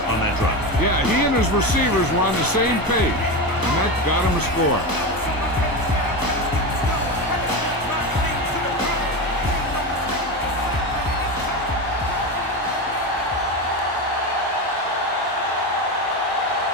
on that drive. Yeah, he and his receivers were on the same page, and that got him a score.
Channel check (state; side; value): late; right; 1.0 ms